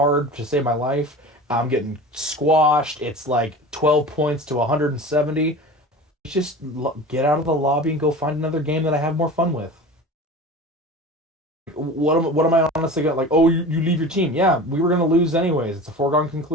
to save my life, I'm getting squashed. It's like 12 points to 170. Just get out of the lobby and go find another game that I have more fun with. What am I honestly gonna like? Oh, you leave your team. Yeah, we were gonna lose anyways. It's a foregone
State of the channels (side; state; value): both; normal; correlation 0.35